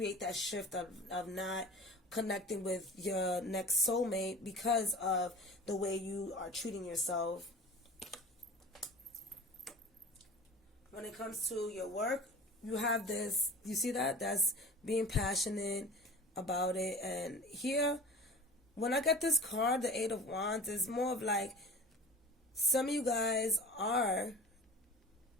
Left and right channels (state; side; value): normal; both; correlation 0.39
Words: that shift of not connecting with your next soulmate because of the way you are treating yourself. When it comes to your work, you have this, you see that? That's being passionate, about it. And here, when I get this card, the Eight of Wands, it's more of like some of you guys are